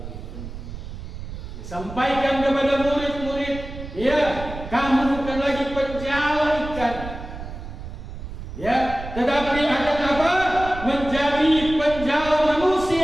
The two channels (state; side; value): noise; right; rumble, 10 dB below the sound